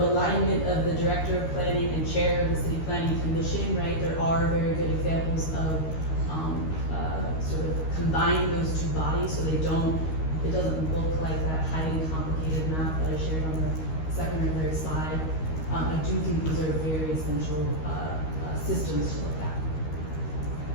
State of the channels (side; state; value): right; late; 13 ms